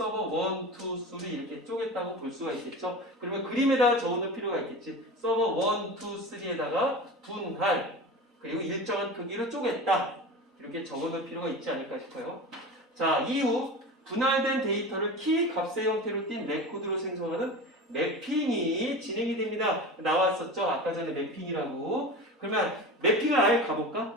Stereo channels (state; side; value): normal; both; correlation 0.30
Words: 1, 2, 3 이렇게 쪼갰다고 볼 수가 있겠죠. 그러면 그림에다가 적어놓을 필요가 있겠지. 서버 1, 2, 3에다가 분할 그리고 일정한 크기로 쪼갰다. 이렇게 적어놓을 필요가 있지 않을까 싶어요. 자, 이후 분할된 데이터를 키 값의 형태로 띈 레코드로 생성하는 매핑이 진행이 됩니다. 나왔었죠? 아까 전에 매핑이라고. 그러면 매핑을 아예 가볼까?